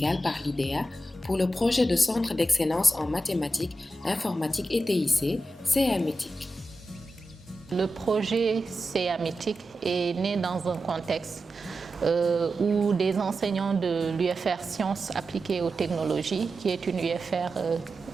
par l'IDEA pour le projet de centre d'excellence en mathématiques, informatique et TIC, CAMETIC. Le projet CAMETIC est né dans un contexte où des enseignants de l'UFR Sciences appliquées aux technologies, qui est une UFR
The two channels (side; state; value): both; normal; correlation 0.91